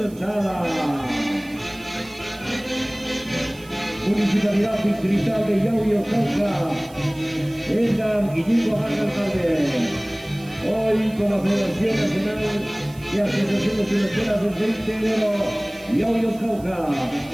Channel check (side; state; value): right; noise; hiss, 23 dB below the sound